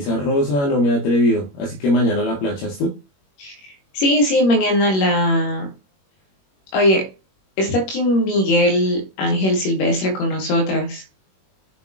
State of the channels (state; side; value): late; right; 21 ms